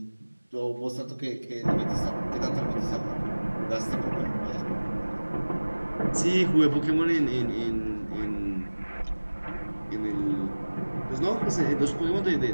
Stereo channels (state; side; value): inverted; both; correlation -1.00